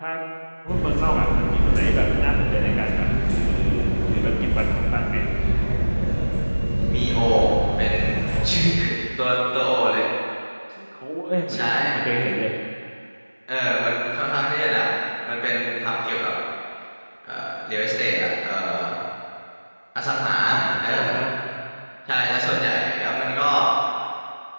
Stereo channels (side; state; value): both; inverted; correlation -1.00